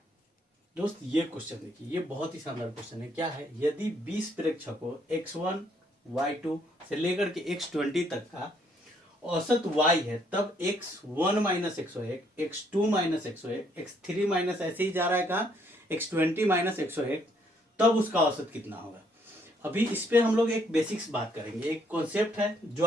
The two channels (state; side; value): normal; both; correlation 0.69